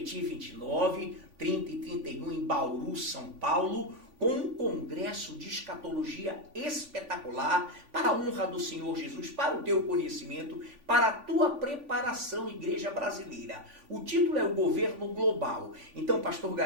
29, 30 e 31 em Bauru, São Paulo, com um congresso de escatologia espetacular para a honra do Senhor Jesus, para o teu conhecimento, para a tua preparação, igreja brasileira. O título é o Governo Global. Então, pastor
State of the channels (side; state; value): left; late; 3.5 ms